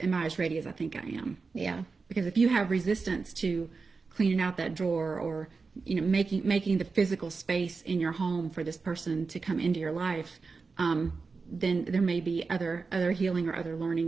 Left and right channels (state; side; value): quieter; left; 4.4 dB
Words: I as ready as I think I am? Yeah. Because if you have resistance to cleaning out that drawer, or making the physical space in your home for this person to come into your life, then there may be other healing or other